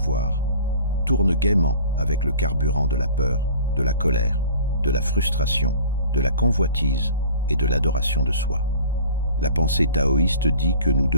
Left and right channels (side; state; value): both; inverted; correlation -0.45